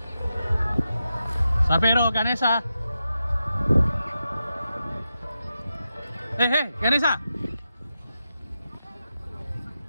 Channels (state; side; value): inverted; both; correlation -0.89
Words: Sapero Ganesha. Ganesha.